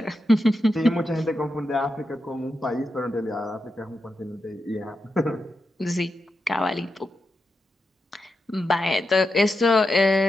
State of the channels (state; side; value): normal; both; correlation 0.87